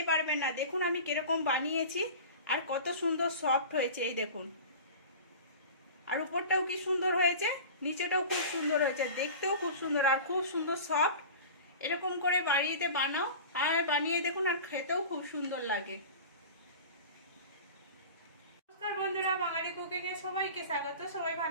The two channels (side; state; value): both; inverted; correlation -0.36